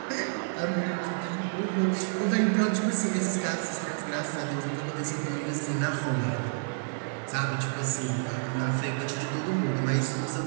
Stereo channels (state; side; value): silent; left; 58 dB below the other